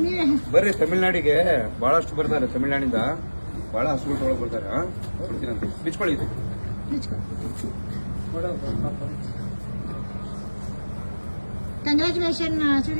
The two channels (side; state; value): both; inverted; correlation -1.00